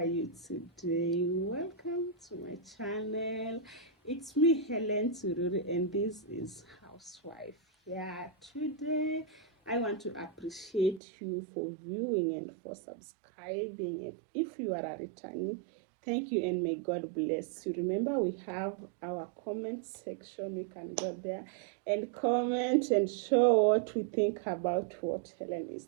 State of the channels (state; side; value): drops out; left; at 11.0 s